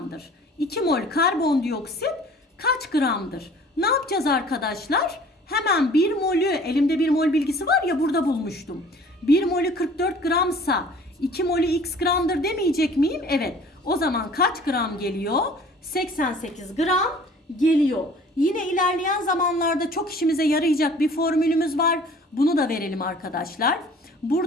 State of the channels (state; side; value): normal; both; correlation 0.50